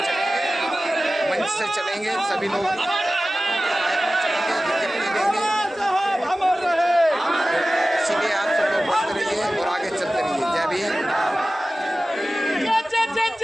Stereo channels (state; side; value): normal; both; correlation 0.96